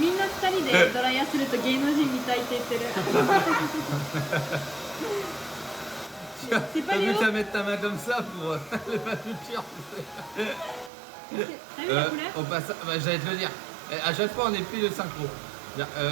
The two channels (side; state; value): left; drops out; at 10.9 s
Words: んな二人でドライヤーすると芸能人みたいって言ってる。C'est pas T'as vu Léo. qu'à mettre ta main comme ça pour les manucures. T'as vu la couleur? Au passage, bah, j'allais te le dire. À chaque fois on est pris de synchro.